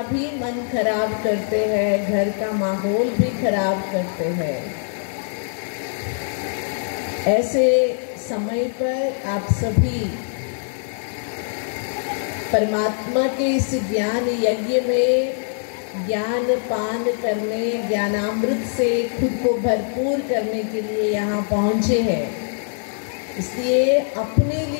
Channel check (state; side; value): silent; right; digital silence